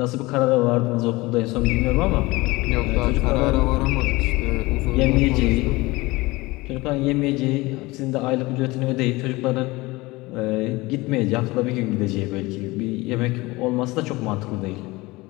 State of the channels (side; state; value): right; quieter; 21.7 dB